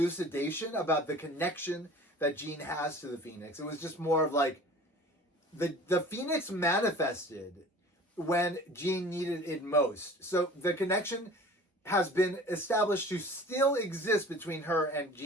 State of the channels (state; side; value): normal; both; correlation 0.44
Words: about the connection that Jean has to the Phoenix. It was just more of like, the Phoenix manifested when Jean needed it most. So the connection has been established to still exist between her and